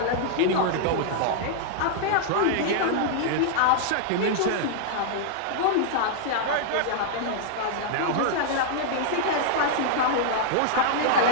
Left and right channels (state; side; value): different; both; correlation -0.01